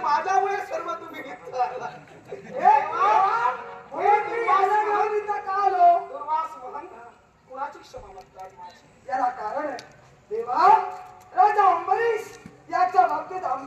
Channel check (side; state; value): both; identical; correlation 1.00